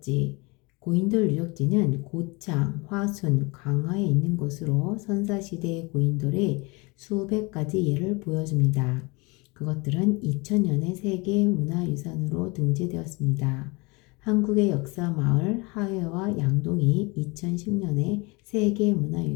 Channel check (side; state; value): right; quieter; 26.9 dB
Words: 고인돌 유적지는 고창, 화순, 강화에 있는 곳으로 선사시대의 고인돌의 수백 가지 예를 보여줍니다. 그것들은 2000년에 세계문화유산으로 등재되었습니다. 한국의 역사 마을 하회와 양동이 2010년에